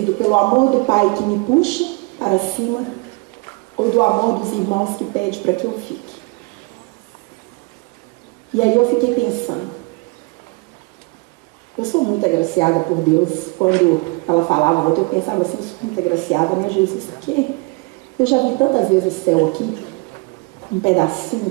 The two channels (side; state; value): left; quieter; 28.4 dB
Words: pelo amor do Pai que me puxa para cima ou do amor dos irmãos que pede para que eu fique. E aí eu fiquei pensando, eu sou muito agraciada por Deus. Quando ela falava, eu pensava assim, eu sou muito agraciada, né, Jesus? Porque eu já vi tantas vezes o céu aqui, um pedacinho